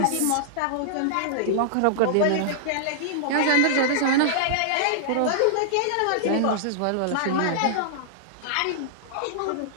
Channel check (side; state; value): both; different; correlation -0.01